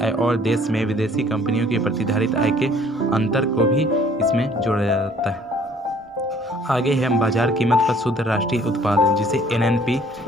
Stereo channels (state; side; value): normal; both; correlation 0.57